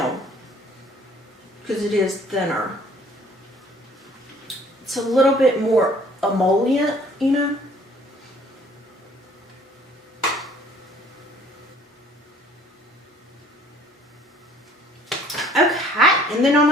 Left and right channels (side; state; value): both; normal; correlation 0.56